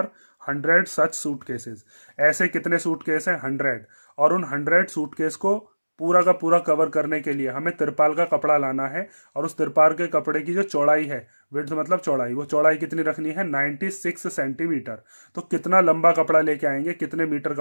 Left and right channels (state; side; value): inverted; both; correlation -1.00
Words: 100 such suitcases. ऐसे कितने सूटकेस हैं 100, और उन 100 सूटकेस को पूरा का पूरा कवर करने के लिए हमें तिरपाल का कपड़ा लाना है, और उस तिरपाल के कपड़े की जो चौड़ाई है, विड्थ मतलब चौड़ाई, वो चौड़ाई कितनी रखनी है 96 सेंटीमीटर। तो कितना लंबा कपड़ा लेके आएंगे, कितने मीटर